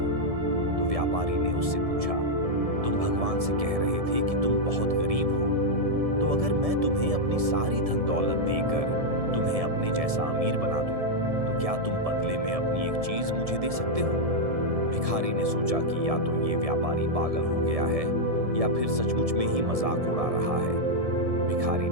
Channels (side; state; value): left; late; 1.7 ms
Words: तो व्यापारी ने उससे पूछा, तुम भगवान से कह रहे थे कि तुम बहुत गरीब हो, तो अगर मैं तुम्हें अपनी सारी धन दौलत देकर तुम्हें अपने जैसा अमीर बना दूं, तो क्या तुम बदले में अपनी एक चीज मुझे दे सकते हो। भिखारी ने सोचा कि या तो ये व्यापारी पागल हो गया है या फिर सचमुच में ही मजाक उड़ा रहा है। भिखारी